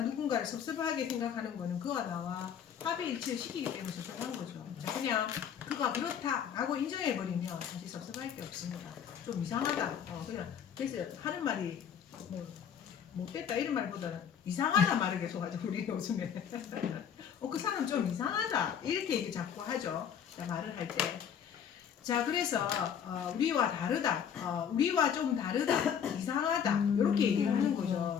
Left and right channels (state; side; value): quieter; right; 8.2 dB